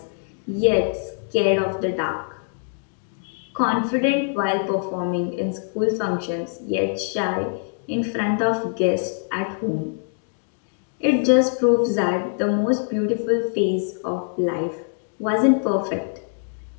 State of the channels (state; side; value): silent; right; 62 dB below the other